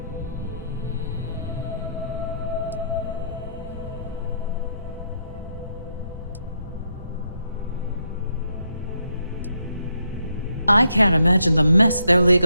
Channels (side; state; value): both; inverted; correlation -0.77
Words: I can't imagine the mess their